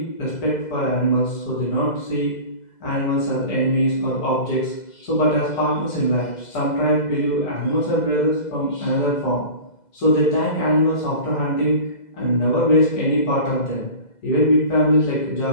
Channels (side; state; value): right; late; 2.0 ms